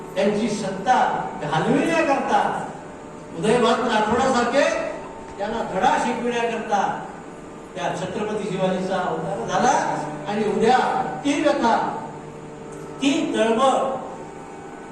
त्यांची सत्ता घालविण्याकरता उदयभान राठोडासारखे त्यांना धडा शिकविण्याकरता त्या छत्रपती शिवाजीचा अवतार झाला. आणि उद्या ती व्यथा, ती तळमळ,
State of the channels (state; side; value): identical; both; correlation 1.00